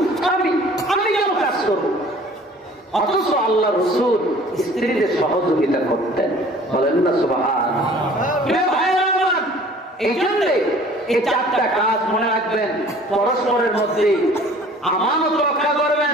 স্বামী, আমি কেন কাজ করবো? অথচ আল্লাহ রাসূল স্ত্রীদের সহযোগিতা করতেন। বলেন না সুবহানাল্লাহ। এই জন্য এই 4টা কাজ মনে রাখবেন। পরস্পরের মধ্যে আমানত রক্ষা করবেন,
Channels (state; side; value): normal; both; correlation 0.50